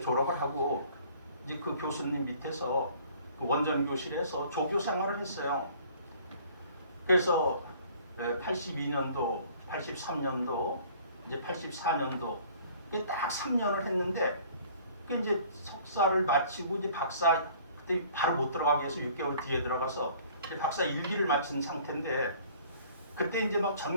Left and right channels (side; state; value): both; inverted; correlation -0.53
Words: 졸업을 하고 이제 그 교수님 밑에서 그 원전 교실에서 조교 생활을 했어요. 그래서 82년도, 83년도, 이제 84년도 딱 3년을 했는데 그 이제 석사를 마치고 이제 박사 그때 바로 못 들어가게 해서 6개월 뒤에 들어가서 이제 박사 1기를 마친 상태인데 그때 이제 막